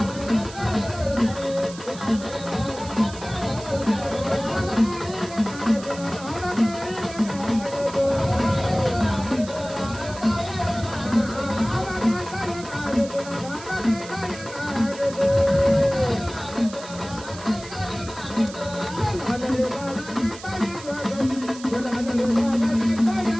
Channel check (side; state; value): right; noise; hiss, 16 dB below the sound